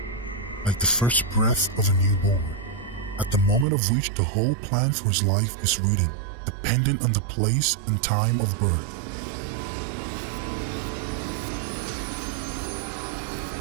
like the first breath of a newborn, at the moment of which the whole plan for his life is written, dependent on the place and time of birth.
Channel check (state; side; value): drops out; left; at 3.7 s